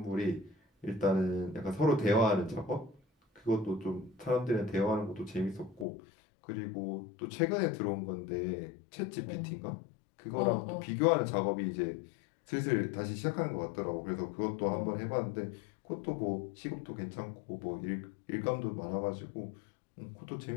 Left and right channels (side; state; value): right; drops out; at 5.9 s